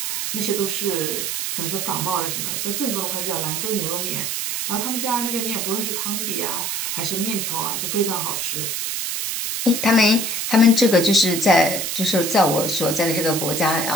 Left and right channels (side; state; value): right; noise; hiss, 2 dB below the sound